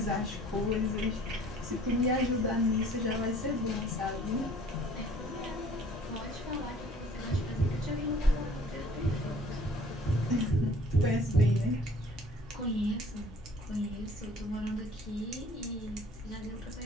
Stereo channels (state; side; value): normal; both; correlation 0.53